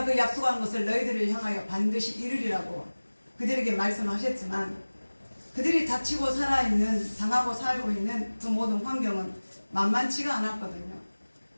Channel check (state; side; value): inverted; both; correlation -1.00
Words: 그 약속한 것을 너희들을 향하여 반드시 이루리라고 그들에게 말씀하셨지만 그들이 다치고 살아있는 당하고 살고 있는 그 모든 환경은 만만치가 않았거든요.